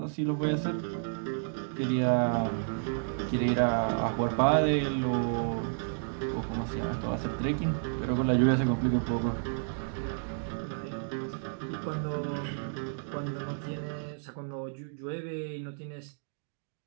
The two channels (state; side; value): silent; left; digital silence